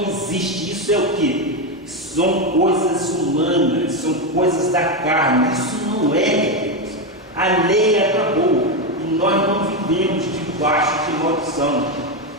existe. Isso é o quê? São coisas humanas, são coisas da carne. Isso não é de Deus. A lei acabou e nós não vivemos debaixo de maldição.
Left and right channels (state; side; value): normal; both; correlation 0.09